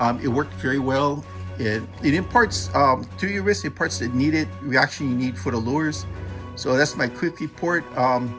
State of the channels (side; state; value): both; identical; correlation 1.00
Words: it worked very well. It imparts to your wrist, it imparts the needed reaction you need for the lures. So that's my quick report.